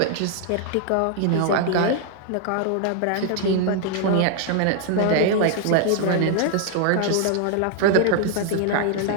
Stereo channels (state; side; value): different; both; correlation 0.00